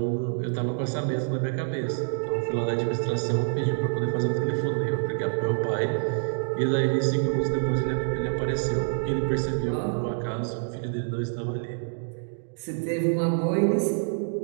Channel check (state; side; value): silent; left; digital silence